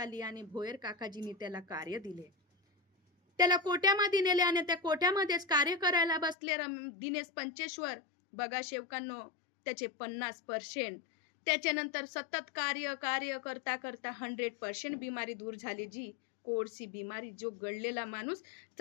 आणि भोयर काकाजींनी त्याला कार्य दिले. त्याला कोट्यामध्ये नेले आणि त्या कोट्यामध्येच कार्य करायला बसले दिनेश पंचेश्वर. बघा शेवकांनो, त्याचे 50%. त्याच्यानंतर सतत कार्य करता करता 100% बिमारी दूर झाली जी. कोडची बिमारी, जो गळलेला माणूस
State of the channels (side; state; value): right; drops out; at 6.4 s